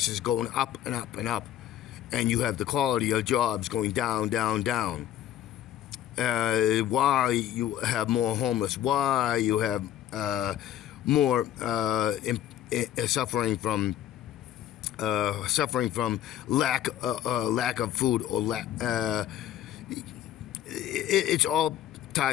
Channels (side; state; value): right; quieter; 11.6 dB